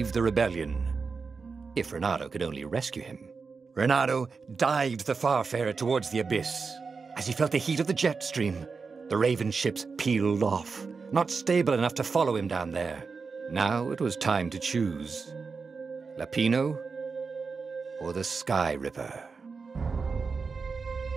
the rebellion. If Reynardo could only rescue him. Reynardo dived the Farfarer towards the abyss. As he felt the heat of the jet stream, the Raven ships peeled off, not stable enough to follow him down there. Now it was time to choose. Lapino or the Sky Ripper.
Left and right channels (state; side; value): quieter; left; 4.9 dB